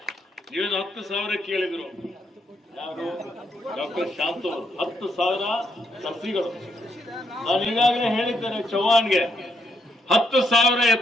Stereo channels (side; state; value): both; normal; correlation 0.76